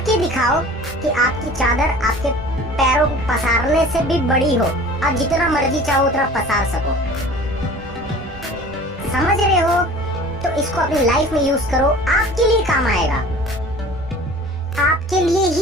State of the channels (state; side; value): normal; both; correlation 0.43